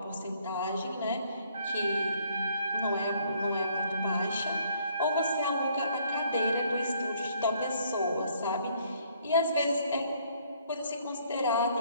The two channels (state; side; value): inverted; both; correlation -0.64